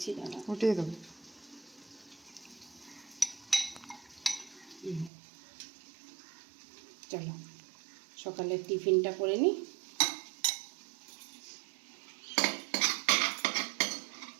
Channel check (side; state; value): left; drops out; at 5.1 s